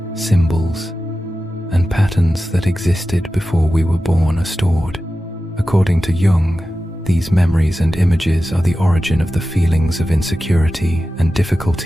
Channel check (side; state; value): both; normal; correlation 0.94